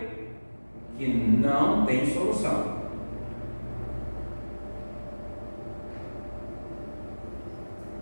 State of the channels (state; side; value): inverted; both; correlation -1.00